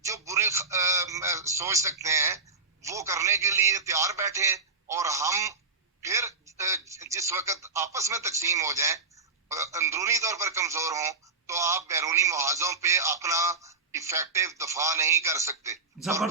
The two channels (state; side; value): quieter; left; 4.1 dB